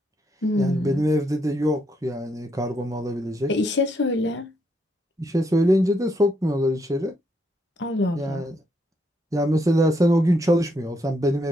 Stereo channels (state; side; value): normal; both; correlation 0.76